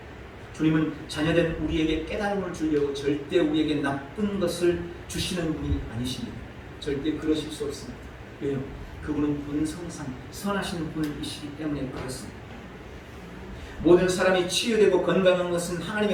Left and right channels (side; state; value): both; identical; correlation 1.00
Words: 주님은 자녀된 우리에게 깨달음을 주려고 절대 우리에게 나쁜 것을 주시는 분이 아니십니다. 절대 그러실 수 없습니다. 왜요? 그분은 본성상 선하신 분이시기 때문에 그렇습니다. 모든 사람이 치유되고 건강한 것은